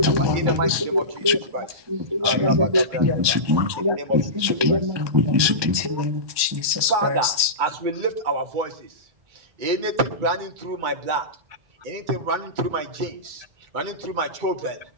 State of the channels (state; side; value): late; left; 1.2 ms